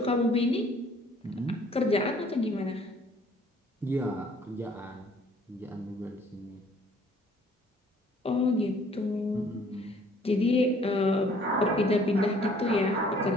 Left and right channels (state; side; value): normal; both; correlation 0.58